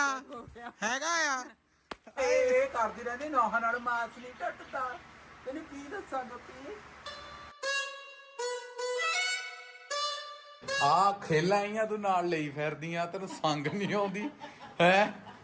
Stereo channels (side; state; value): both; identical; correlation 1.00